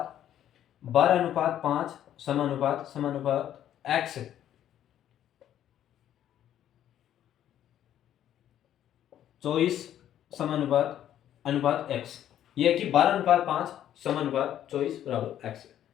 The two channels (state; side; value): quieter; right; 11.1 dB